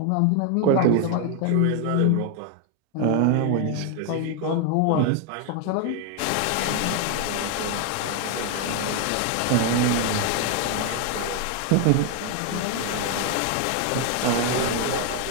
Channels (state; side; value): different; both; correlation 0.00